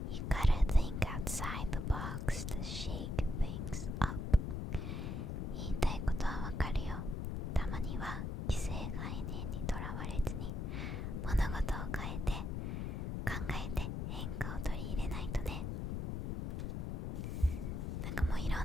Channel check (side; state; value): left; noise; rumble, 2 dB below the sound